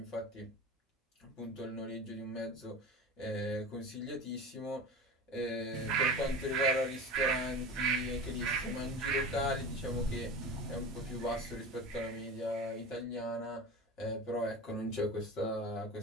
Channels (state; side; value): normal; both; correlation 0.31